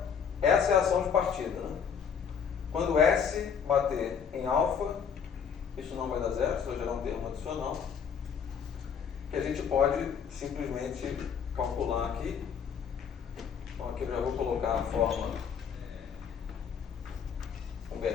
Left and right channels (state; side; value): quieter; right; 7.1 dB